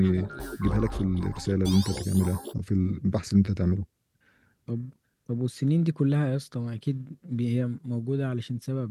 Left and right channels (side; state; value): both; identical; correlation 1.00